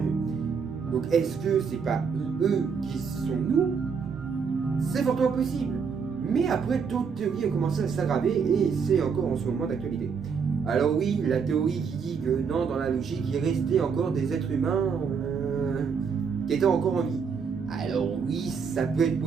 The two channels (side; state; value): left; quieter; 6.0 dB